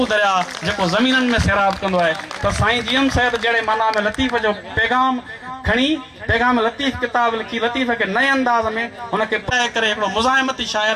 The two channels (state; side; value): identical; both; correlation 1.00